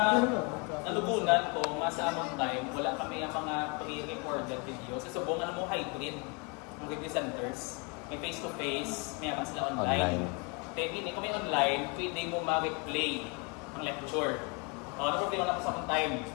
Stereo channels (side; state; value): right; quieter; 31.7 dB